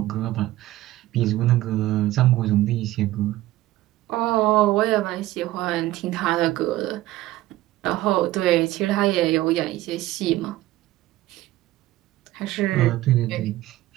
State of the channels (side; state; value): left; quieter; 16.1 dB